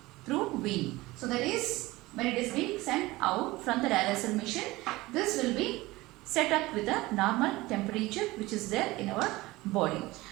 through vein. So that is when it is being sent out from the dialyzer machine, this will be set up with a normal temperature which is there in our body.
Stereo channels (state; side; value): quieter; left; 19.9 dB